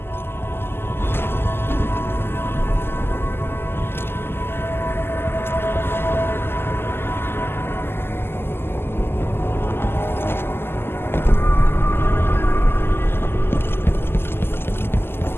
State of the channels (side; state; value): right; late; 0.11 ms